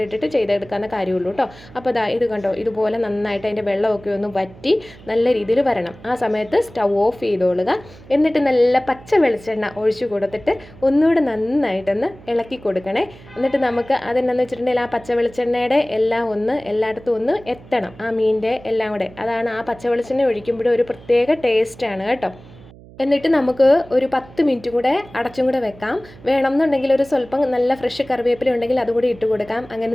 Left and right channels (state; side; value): noise; right; hum, 21 dB below the sound